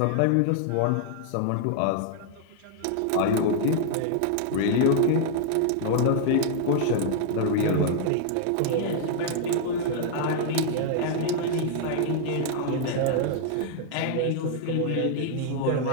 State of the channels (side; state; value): both; different; correlation 0.00